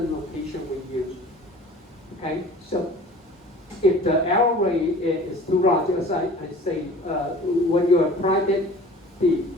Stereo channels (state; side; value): normal; both; correlation 0.44